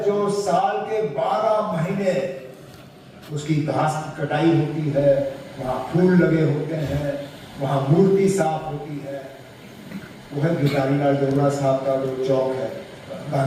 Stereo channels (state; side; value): identical; both; correlation 1.00